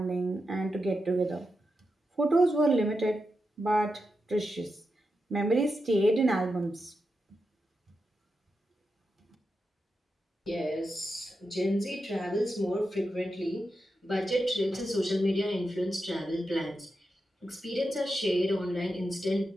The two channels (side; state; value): both; normal; correlation 0.88